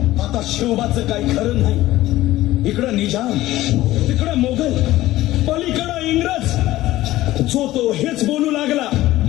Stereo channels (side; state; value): right; quieter; 16.1 dB